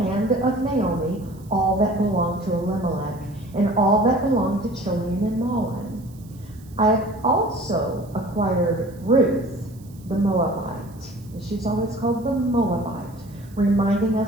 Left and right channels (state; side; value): noise; right; hiss, 27 dB below the sound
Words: of Naomi all that belonged to Elimelech and all that belonged to Chilion and Mahlon. I have also acquired Ruth, the Moabite. She's always called the Moabite, reminding